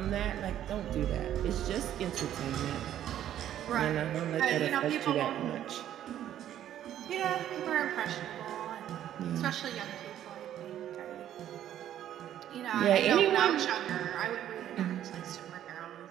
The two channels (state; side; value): quieter; left; 11.3 dB